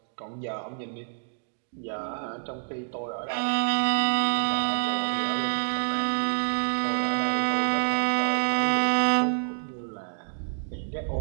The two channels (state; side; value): silent; left; digital silence